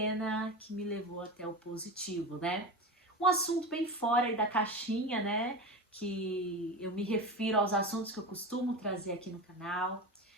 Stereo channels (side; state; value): both; normal; correlation 0.24